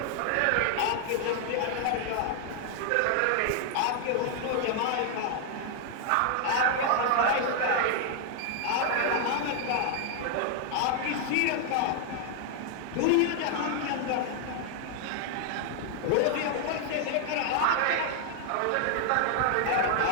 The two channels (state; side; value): different; both; correlation 0.00